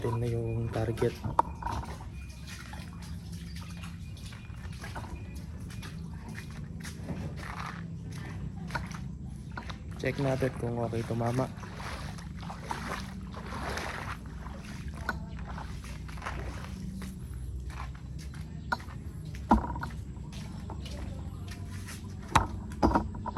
na yung target. Check natin kung okay tumama.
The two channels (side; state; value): both; identical; correlation 1.00